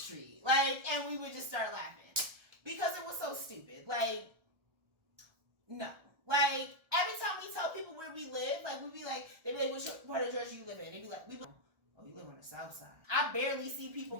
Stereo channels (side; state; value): left; late; 1.4 ms